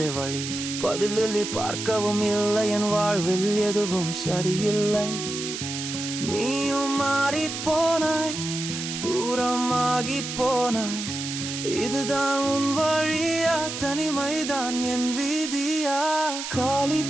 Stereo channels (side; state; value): right; noise; hiss, 6 dB below the sound